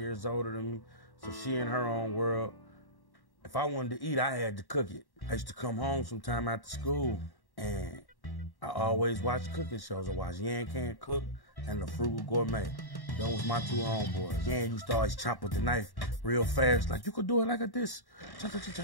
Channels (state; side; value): late; right; 1.1 ms